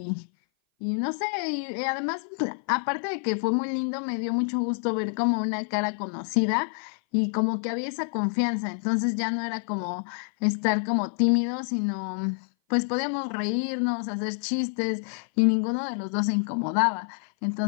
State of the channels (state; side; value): silent; right; 57 dB below the other